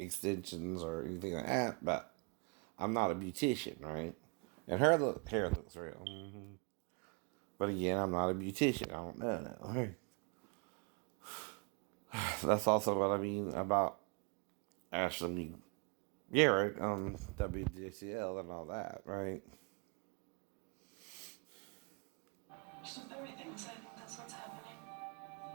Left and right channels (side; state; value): left; quieter; 34.8 dB